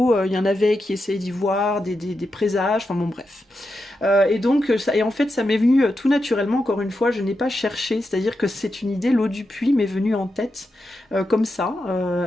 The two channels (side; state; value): both; normal; correlation 0.87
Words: Il y en avait qui essayaient d'y voir des présages, enfin bon bref. Et en fait ça m'est venu tout naturellement, encore une fois, je n'ai pas cherché, c'est-à-dire que c'est une idée, l'eau du puits m'est venue en tête comme ça.